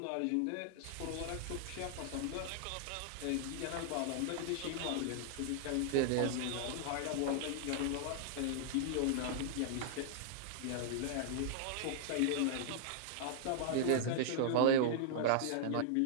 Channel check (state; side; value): different; both; correlation -0.01